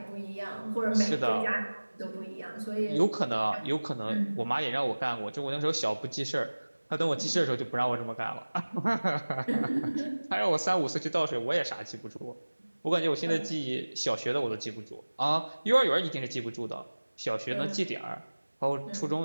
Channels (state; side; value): inverted; both; correlation -1.00